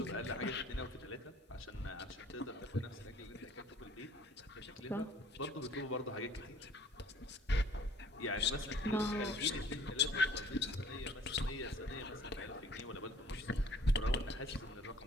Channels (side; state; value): both; normal; correlation 0.54